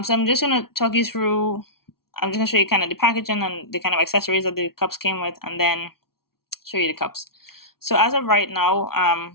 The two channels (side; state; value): right; late; 0.94 ms